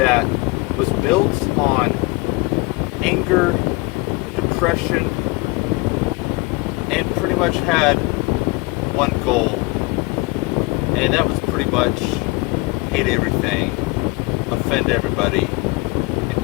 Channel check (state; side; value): quieter; right; 24.6 dB